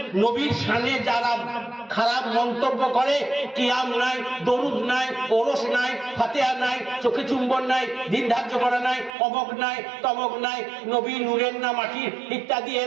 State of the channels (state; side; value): drops out; left; at 9.2 s